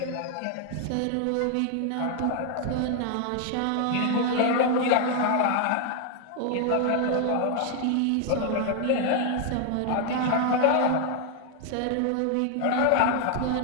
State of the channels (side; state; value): both; different; correlation 0.00